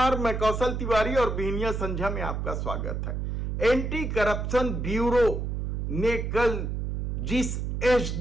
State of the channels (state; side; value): noise; right; hum, 2 dB below the sound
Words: मैं कौशल तिवारी और बिहनिया संझा में आपका स्वागत है। एंटी करप्शन ब्यूरो ने कल जिस